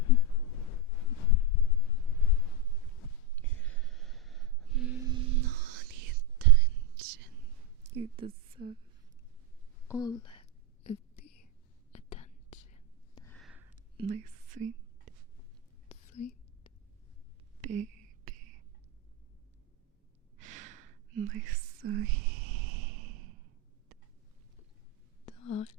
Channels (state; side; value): normal; both; correlation 0.06